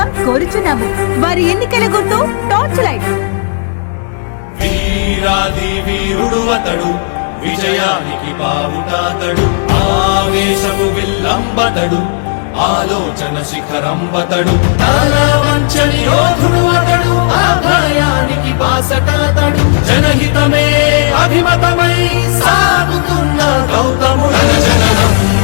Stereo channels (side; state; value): right; silent; digital silence